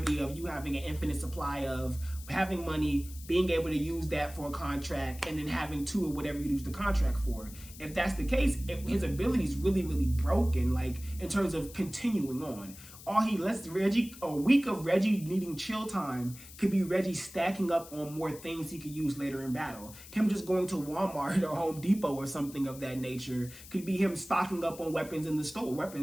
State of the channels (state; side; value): noise; left; hiss, 17 dB below the sound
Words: of you having an infinite supply of having money, being able to use that for a contract, and then having two or whatever you use the contract for? If that's the case, his ability is really, really broken, like in terms of continuing on. A week of Reggie needing chill time could be Reggie stacking up on more things he could use later in battle. Him just going to Walmart or Home Depot or something of that nature could be him stocking up on weapons in the store,